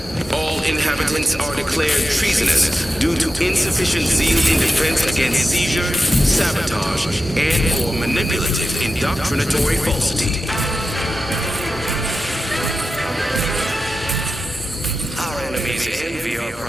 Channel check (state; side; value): normal; both; correlation 0.92